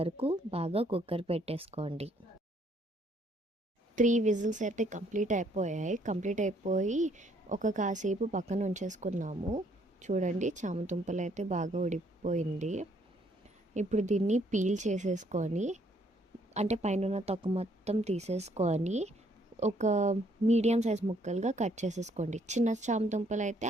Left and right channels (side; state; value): both; normal; correlation 0.67